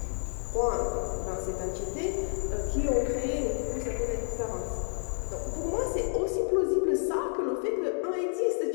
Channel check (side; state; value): right; silent; digital silence